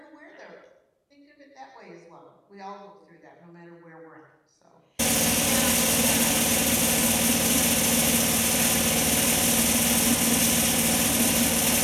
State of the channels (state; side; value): identical; both; correlation 1.00